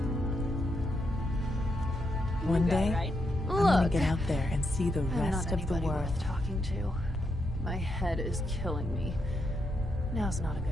One day, right? I'm gonna get out there and see the I'm rest not of the anybody world. worth talking to. My head is killing me. Now's not a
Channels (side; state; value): both; normal; correlation 0.81